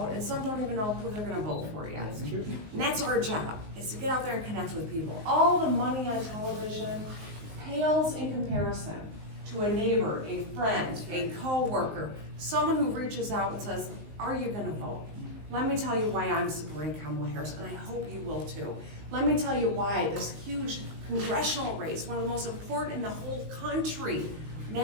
and some don't even know who they're going to vote for yet. And that's our job, is to get out there and connect with people. All the money on television pales in comparison to a neighbor, a friend, a co-worker, someone who reaches out and says, are you gonna vote? Let me tell you why I'm supporting Kamala Harris, and I hope you will too. Let me tell you why this huge congressional race, one of the most important in the whole country,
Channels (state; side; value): late; left; 19 ms